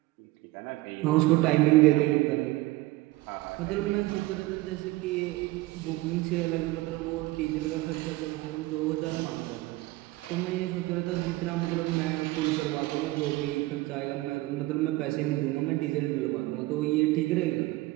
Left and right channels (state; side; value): quieter; left; 19.4 dB